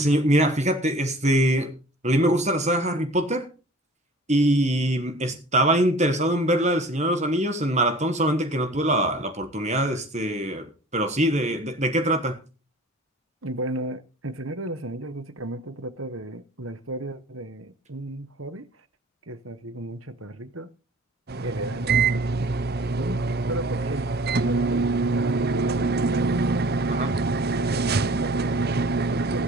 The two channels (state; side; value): normal; both; correlation 0.47